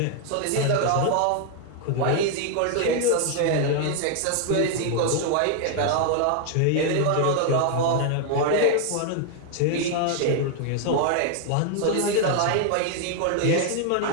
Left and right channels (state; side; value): different; both; correlation 0.00